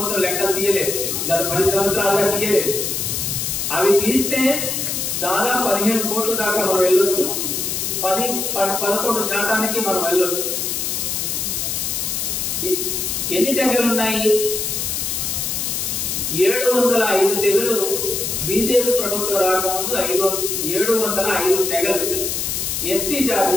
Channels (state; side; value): noise; left; hiss, 1 dB below the sound